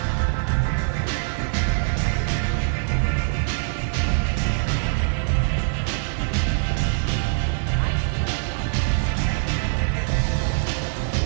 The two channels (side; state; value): left; silent; digital silence